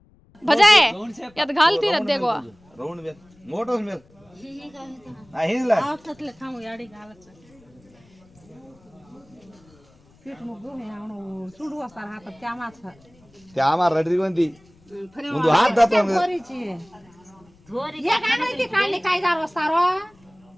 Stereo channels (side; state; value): left; noise; rumble, 29 dB below the sound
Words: भजाए यात घालती रह देखो राउंड में मोटोस में आ हिला आवतले खाऊ याडी घालच पीठ मुग्गू हे आवणो सुडू असतार हात त्यामाच त्यामा रडरी कोणती ముందు हात दातो धोरीची धोरी या काढायची काढली काय जार वस्तारो